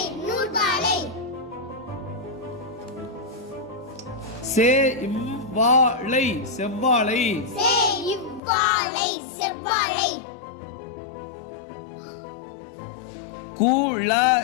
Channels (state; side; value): drops out; right; at 8.4 s